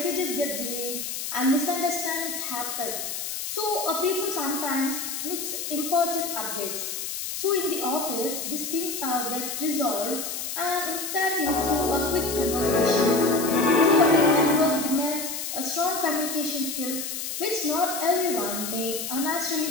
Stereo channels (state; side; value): noise; left; hiss, 5 dB below the sound